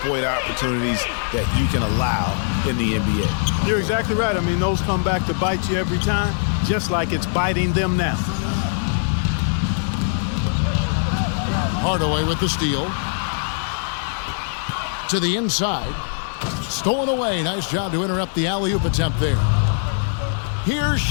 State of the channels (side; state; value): right; silent; digital silence